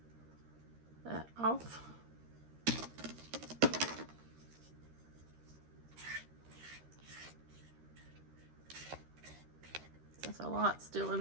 that off. That's a lot still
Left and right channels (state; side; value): late; left; 13 ms